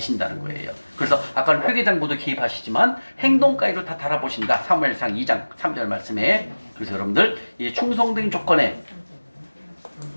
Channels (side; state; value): both; inverted; correlation -1.00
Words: 거예요. 그래서 아까 회개장부도 개입하시지만 행동까지도 다 달아보신다. 사무엘상 2장 3절 말씀에. 그래서 여러분들 이 충성된 조건에